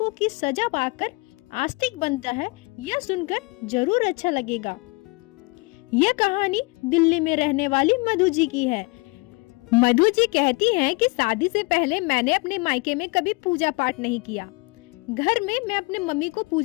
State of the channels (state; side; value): quieter; right; 26.6 dB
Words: की सजा पाकर आस्तिक बनता है, यह सुनकर जरूर अच्छा लगेगा। यह कहानी दिल्ली में रहने वाली मधु जी की है। मधु जी कहती हैं कि शादी से पहले मैंने अपने मायके में कभी पूजा पाठ नहीं किया। घर में मैं अपने मम्मी को